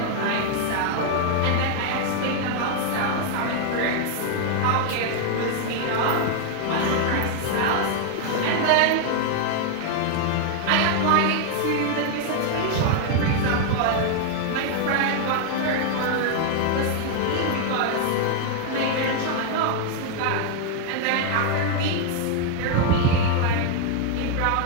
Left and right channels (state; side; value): different; both; correlation 0.00